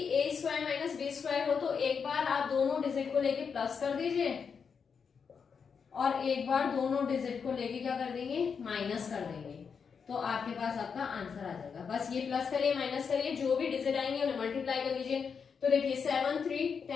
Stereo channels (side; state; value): right; quieter; 6.2 dB